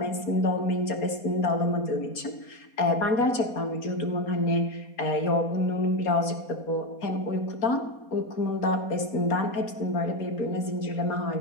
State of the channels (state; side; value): late; right; 4.3 ms